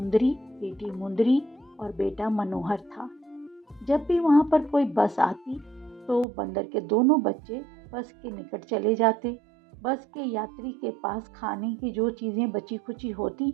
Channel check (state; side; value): drops out; left; at 6.2 s